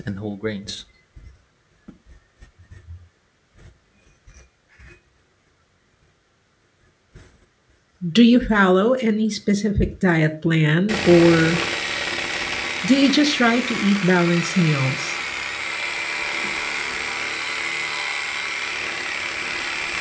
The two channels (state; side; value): identical; both; correlation 1.00